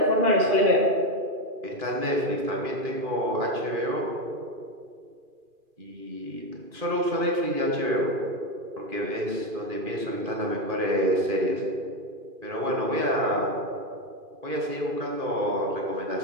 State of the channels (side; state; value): left; late; 2.4 ms